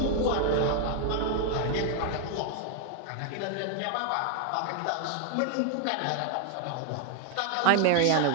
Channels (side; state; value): both; different; correlation 0.00